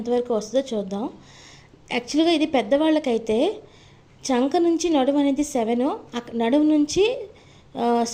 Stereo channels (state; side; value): identical; both; correlation 1.00